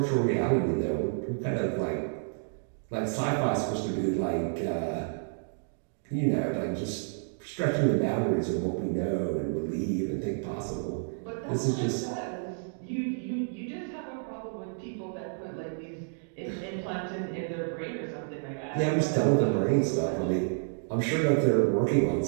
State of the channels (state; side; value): silent; left; digital silence